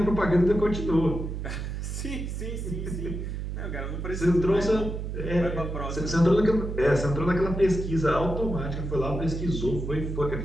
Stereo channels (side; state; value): right; noise; hum, 5 dB below the sound